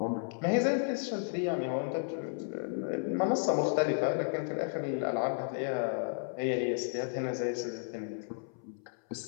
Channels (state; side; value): silent; right; 56 dB below the other